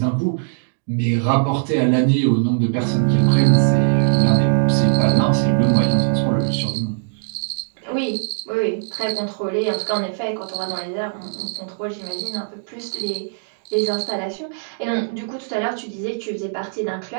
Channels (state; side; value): silent; left; digital silence